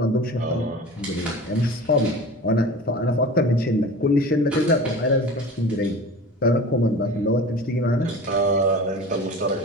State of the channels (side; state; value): both; normal; correlation 0.37